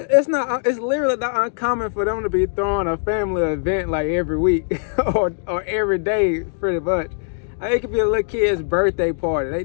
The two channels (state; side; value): silent; right; digital silence